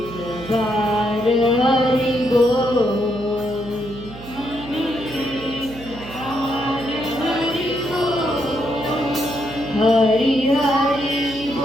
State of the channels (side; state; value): right; noise; hum, 15 dB below the sound